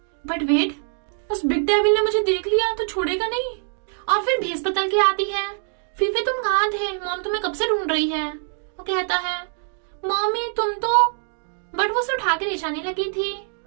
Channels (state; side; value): silent; left; 59 dB below the other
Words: बट वेट, उस बिग डेविल ने मुझे देख लिया तो छोड़ेगा नहीं। और फिर भेस बदल के आती है फीफे तुम कहाँ थे, मॉम तुम्हें कब से ढूंढ रही है। वो कहता है मॉमी तुम तो, बट वो उसे उठा के ले जाने लगी थी।